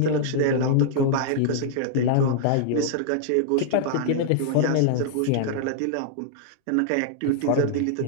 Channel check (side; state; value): both; different; correlation -0.01